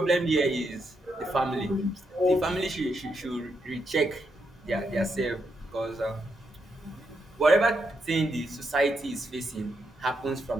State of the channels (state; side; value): normal; both; correlation 0.81